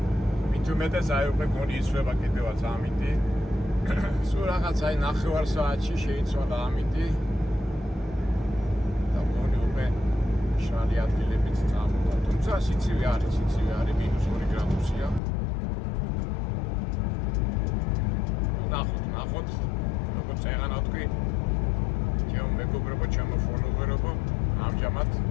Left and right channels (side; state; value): right; drops out; at 15.2 s